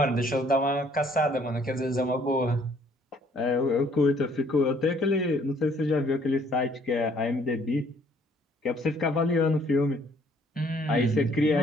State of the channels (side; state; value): both; normal; correlation 0.62